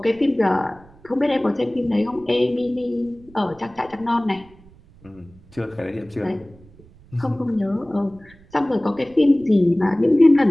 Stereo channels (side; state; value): right; noise; rumble, 25 dB below the sound